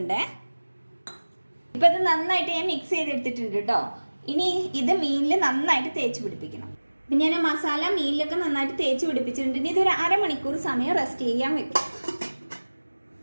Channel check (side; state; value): both; inverted; correlation -1.00